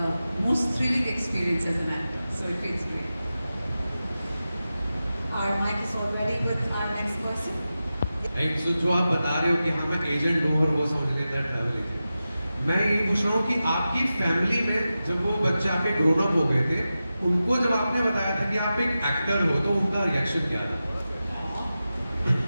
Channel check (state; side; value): inverted; both; correlation -0.93